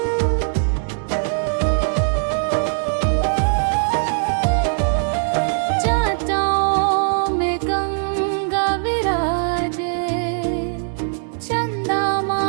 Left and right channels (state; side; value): silent; left; digital silence